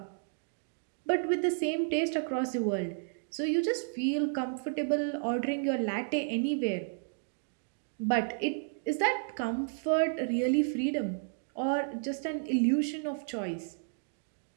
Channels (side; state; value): left; silent; digital silence